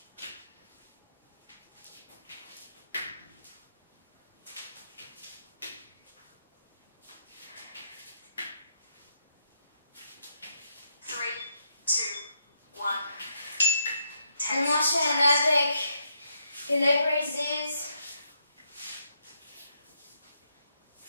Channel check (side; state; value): both; inverted; correlation -0.76